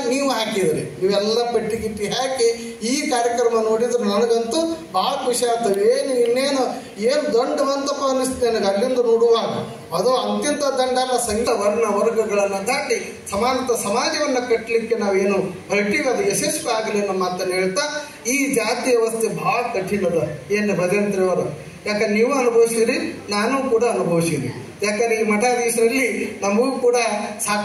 ನೀವು ಹಾಕಿದ್ರಿ. ನೀವೆಲ್ಲ ಪಟ್ಟಿ ಗಿಟ್ಟಿ ಹಾಕಿ ಈ ಕಾರ್ಯಕ್ರಮ ನೋಡಿದ್ರೆ ನನಗಂತೂ ಭಾಳ ಖುಷಿ ಆಗ್ತದೆ. ಇನ್ನೇನು ದಂಡವಂತಪ್ಪ ಅನ್ನಿಸ್ತು ನನಗೆ ಅಲ್ಲಿಂದ ನೋಡುವಾಗ. ಅದು ಅಂತ್ಯಂತ ದಂಡ ಅಲ್ಲ, ಸಂಘ ವರ್ಣ ವರ್ಗಗಳನ್ನು ದಾಟಿ ಸಮಾನತ ಸಮಾಜವನ್ನು ಕಟ್ಟಲಿಕ್ಕೆ ನಾವೇನು ಹೊರಟಿವಿ ಅದು ಯಶಸ್ವಿ ಆಗಲಿ ಅನ್ನೋ ಮಾತನ್ನು ಹೇಳ್ತಾ, ಈ ಜಾತಿ ವ್ಯವಸ್ಥೆ ಭಾಳ ಕಠಿಣದ. ಏನು ಭಜಂತ್ರಿ ಅವರು, ಯಾಕಂದ್ರೆ ನೀವು ಅನುಭವಿಸಿರಿ, ನಾನು ಕೂಡ ಅನುಭವಿಸಿರಿ. ಯಾಕಂದ್ರೆ ಈ ಮಠಾಧೀಶರಲ್ಲಿ ನಮಗೂ ಕೂಡ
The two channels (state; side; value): identical; both; correlation 1.00